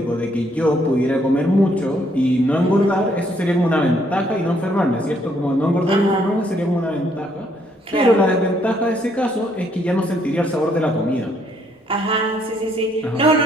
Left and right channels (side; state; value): both; normal; correlation 0.69